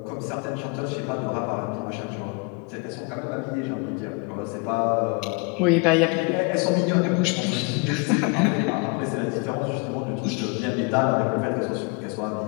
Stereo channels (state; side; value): quieter; right; 31.3 dB